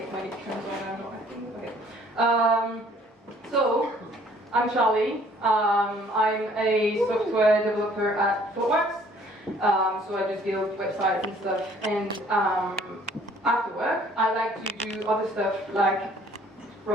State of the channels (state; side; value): normal; both; correlation 0.58